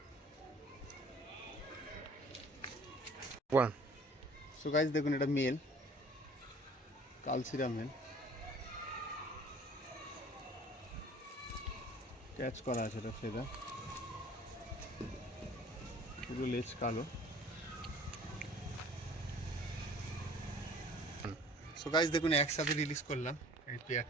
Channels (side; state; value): both; normal; correlation 0.50